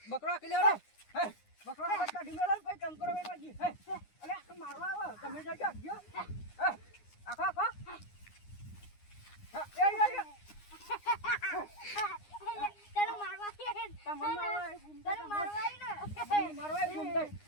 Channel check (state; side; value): late; right; 9.7 ms